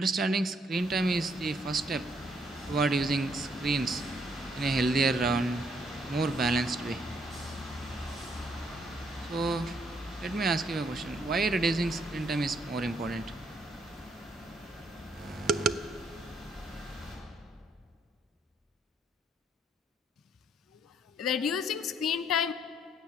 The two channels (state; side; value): normal; both; correlation 0.71